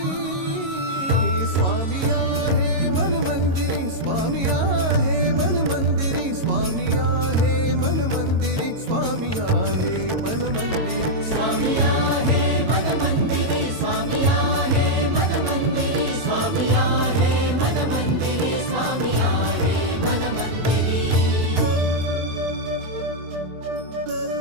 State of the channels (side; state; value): left; late; 22 ms